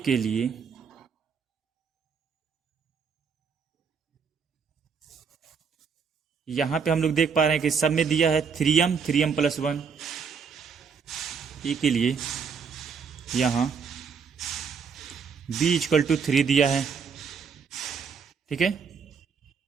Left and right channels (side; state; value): left; quieter; 6.0 dB